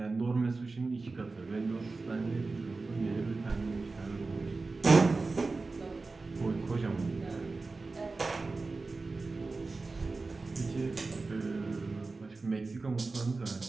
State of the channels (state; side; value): quieter; left; 3.7 dB